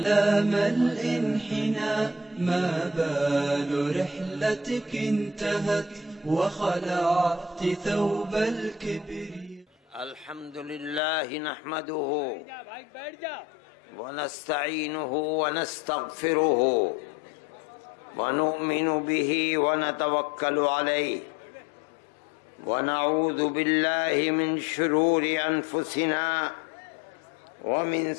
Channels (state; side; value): drops out; right; at 11.0 s